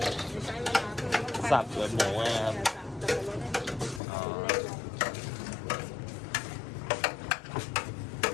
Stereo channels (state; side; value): drops out; right; at 4.0 s